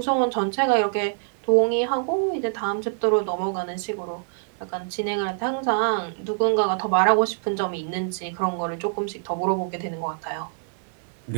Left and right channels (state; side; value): silent; left; digital silence